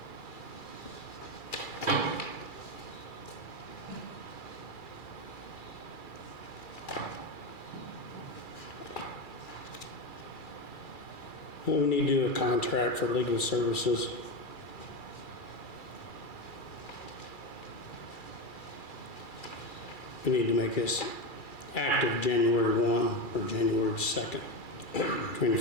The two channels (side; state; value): right; late; 2.3 ms